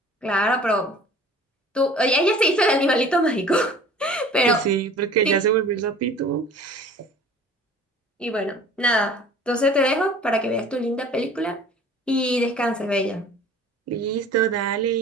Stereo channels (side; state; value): both; normal; correlation 0.47